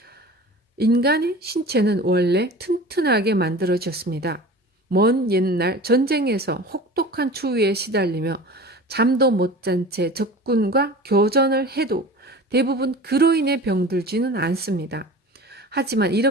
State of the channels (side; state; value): both; normal; correlation 0.38